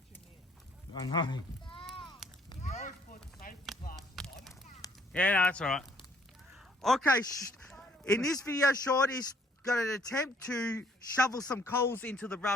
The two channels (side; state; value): both; normal; correlation 0.63